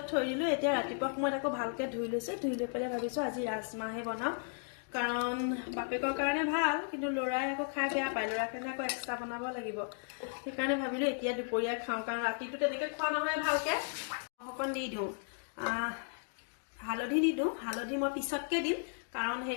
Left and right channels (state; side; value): silent; right; 54 dB below the other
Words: থৈ দিলো এতিয়া ৰাতিপুৱা সময়ত আকৌ ভালকে ধুই লৈছো ধুই লৈ পেলাই ভাবিছো আজি ৰাজমাহে বনাও কাৰণ বাপেকৰ কাৰণে ভাল কিন্তু লৰাই আকৌ খাই বেয়া পায় লৰাৰ কাৰণে আকৌ এক্সট্ৰা বনাব লাগিব সেইকাৰণে ভাবিলো এতিয়া দুপৰীয়া খাওঁ কাৰণ ৰাতিটো তেনেকে খোৱা নহয় ভালকে অকণ দি দিওঁ হালধি নিদিওঁ হালধি মই পিছতকে দিম কাৰণ